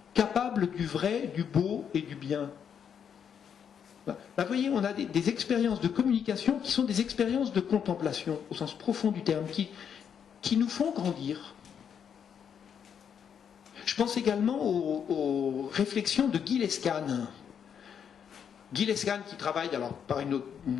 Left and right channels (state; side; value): quieter; right; 7.8 dB